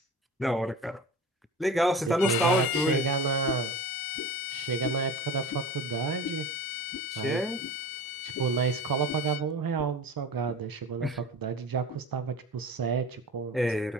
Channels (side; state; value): both; normal; correlation 0.34